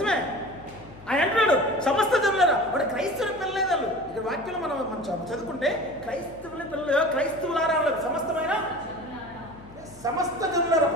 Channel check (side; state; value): left; noise; hum, 21 dB below the sound